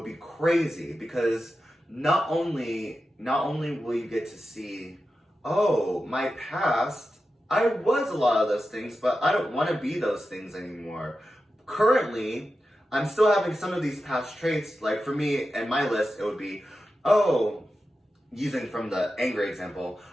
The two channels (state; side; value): normal; both; correlation 0.91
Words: be crazy, because not only will you get to see, oh, my past, I was a lot of those things, but I don't want to be those things anymore. Currently, I'm still having some of these past traits. Like for me, in my list, it would be, oh, using from the angry example,